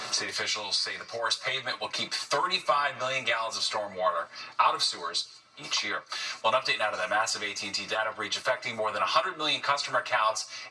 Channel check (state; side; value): identical; both; correlation 1.00